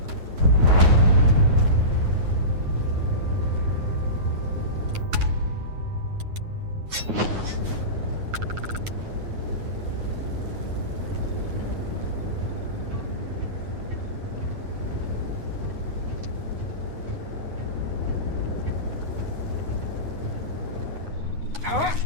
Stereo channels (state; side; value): late; left; 9.5 ms